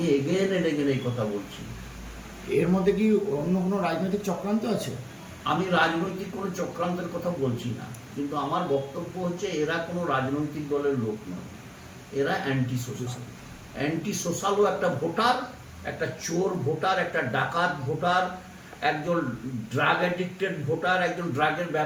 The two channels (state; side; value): identical; both; correlation 1.00